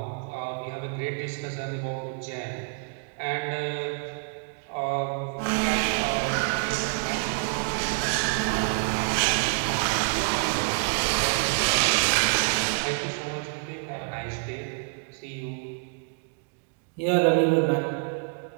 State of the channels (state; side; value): quieter; left; 38.9 dB